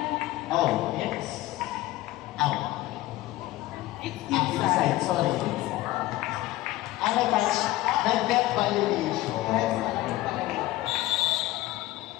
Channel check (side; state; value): right; quieter; 17.1 dB